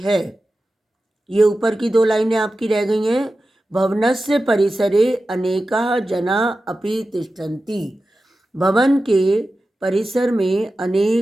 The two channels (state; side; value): normal; both; correlation 0.93